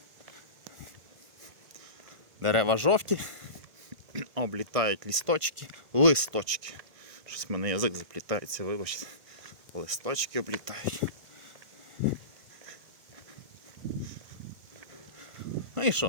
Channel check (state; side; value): late; left; 1.7 ms